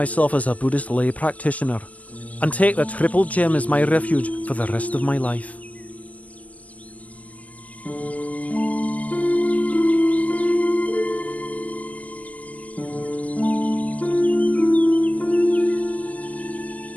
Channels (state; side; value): late; right; 0.068 ms